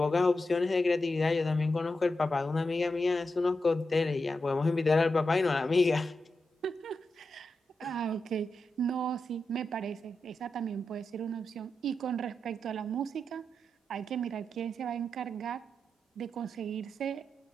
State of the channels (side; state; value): both; normal; correlation 0.88